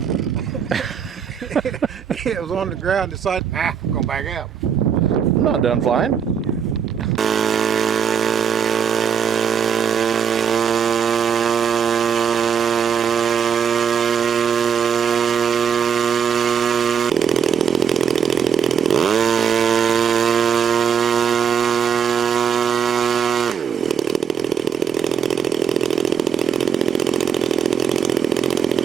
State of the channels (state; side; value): quieter; left; 7.4 dB